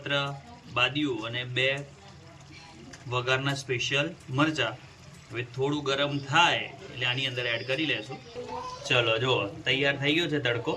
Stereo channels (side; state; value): both; identical; correlation 1.00